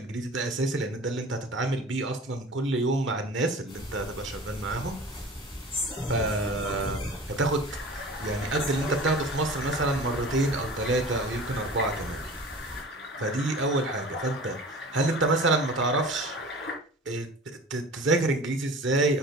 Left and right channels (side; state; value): both; normal; correlation 0.40